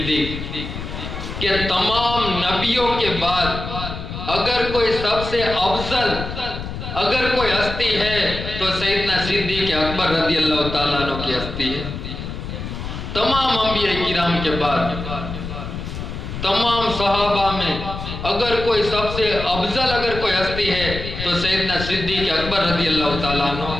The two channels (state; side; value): noise; left; rumble, 7 dB below the sound